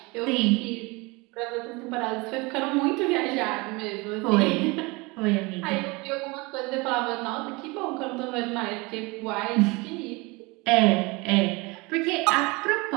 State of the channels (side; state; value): left; quieter; 25.5 dB